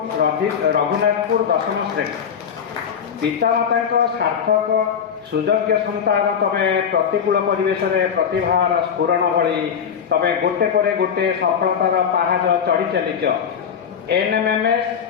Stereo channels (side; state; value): right; quieter; 7.5 dB